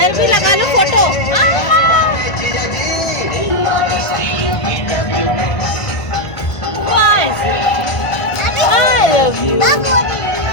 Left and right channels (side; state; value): right; late; 1.5 ms